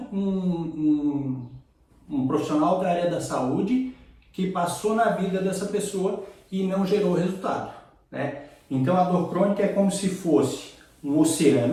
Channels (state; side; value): identical; both; correlation 1.00